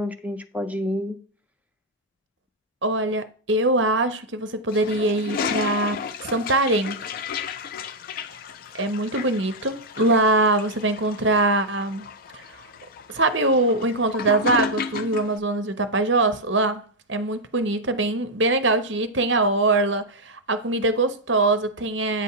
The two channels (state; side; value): normal; both; correlation -0.02